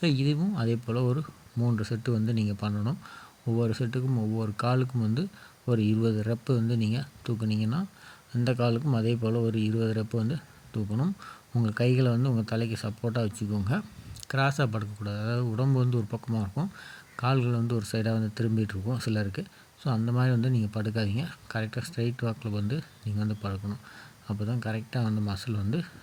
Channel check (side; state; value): both; identical; correlation 1.00